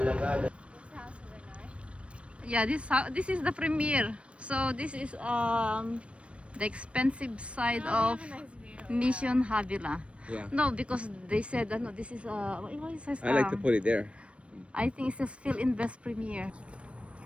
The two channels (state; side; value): late; left; 0.061 ms